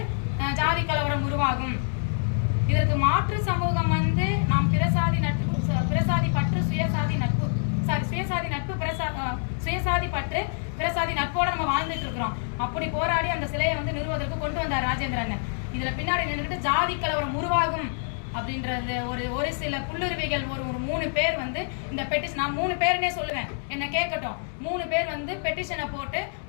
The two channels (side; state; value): right; silent; digital silence